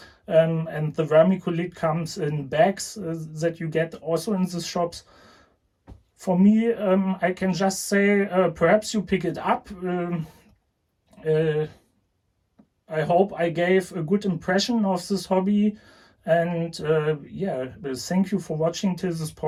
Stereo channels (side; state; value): both; identical; correlation 1.00